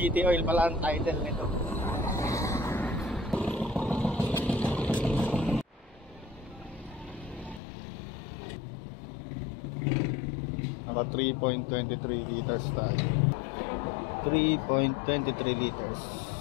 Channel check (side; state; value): right; drops out; at 7.6 s